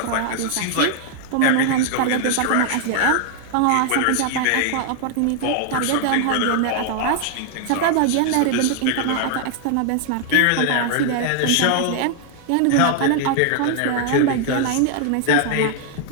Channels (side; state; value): both; different; correlation 0.00